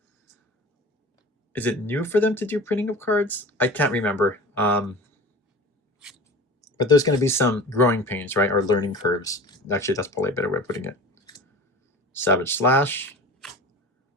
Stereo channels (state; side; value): normal; both; correlation 0.37